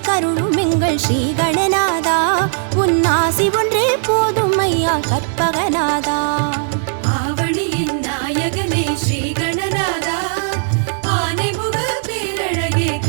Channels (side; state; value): left; silent; digital silence